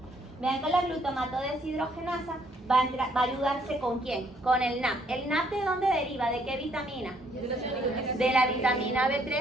Vean que la glutamato deshidrogenasa va a ayudarse ¿con quién? Con el NAP. ¿El NAP de dónde deriva? ¿De qué vitamina? De la vitamina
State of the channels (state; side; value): normal; both; correlation 0.67